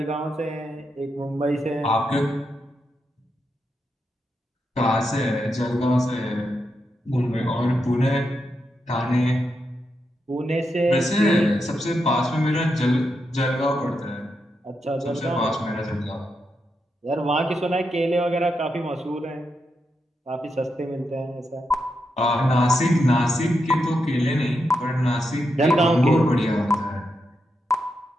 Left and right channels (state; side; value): normal; both; correlation 0.84